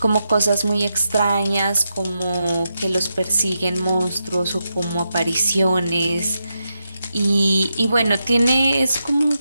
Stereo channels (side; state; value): both; inverted; correlation -0.86